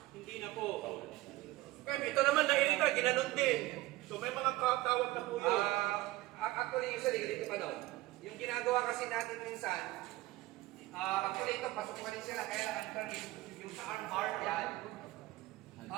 Hindi na po. Okay, ito naman nairita, ginanon din. So may mga tawag na po yun. Actually, usually, dito pa daw. Yung ginagawa kasi natin minsan, actually ito, pasok pa rin sila, kaya ang yung sa arm bar, yan.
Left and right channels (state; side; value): quieter; left; 18.6 dB